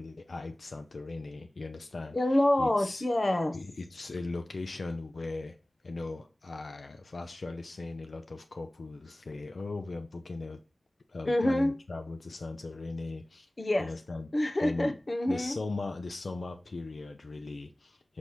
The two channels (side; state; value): both; normal; correlation 0.98